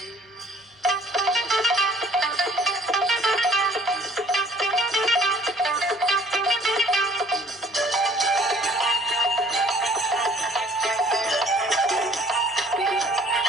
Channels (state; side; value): normal; both; correlation 0.56